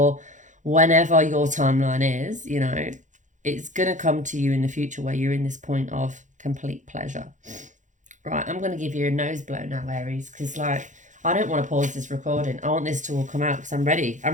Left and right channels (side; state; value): left; late; 0.36 ms